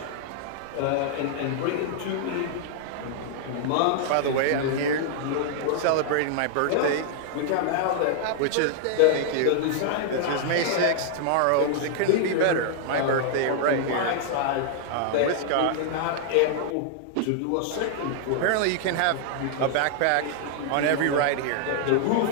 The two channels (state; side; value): different; both; correlation -0.01